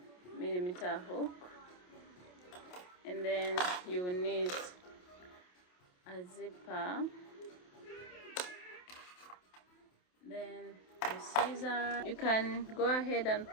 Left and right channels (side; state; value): right; late; 28 ms